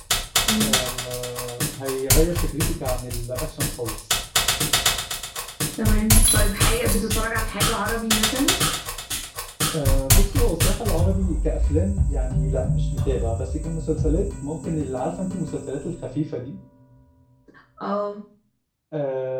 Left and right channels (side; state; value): both; identical; correlation 1.00